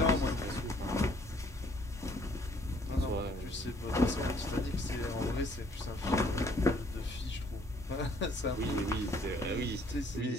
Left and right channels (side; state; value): both; normal; correlation 0.62